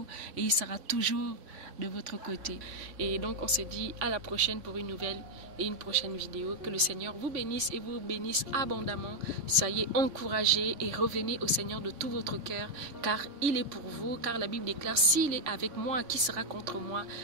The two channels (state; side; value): late; left; 3.6 ms